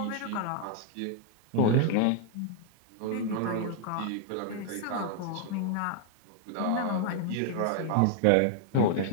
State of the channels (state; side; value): different; both; correlation 0.00